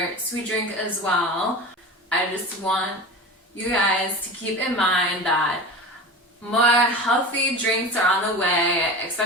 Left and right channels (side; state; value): both; normal; correlation 0.31